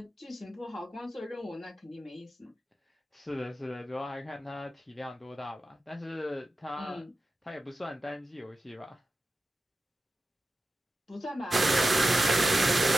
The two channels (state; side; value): normal; both; correlation 0.92